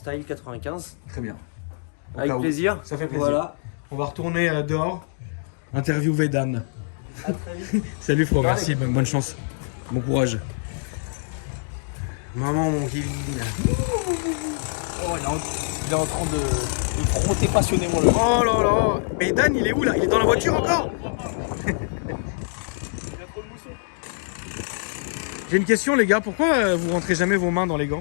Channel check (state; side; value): silent; right; digital silence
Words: 95. Très bien. Au Avec cas où. plaisir. Ça fait plaisir. Voilà. On va retourner dehors, interviewer Dan. À très vite. Salut, frérot, merci, bonne chance. Bon courage. Maman, mon Kevin. Oh, il est en train de frotter passionnément le. Oh là là. Mais Dan, il est où là? Il est dans la voiture encore? J'ai une question, les gars. Pourquoi vous rentrez jamais vos mains dans les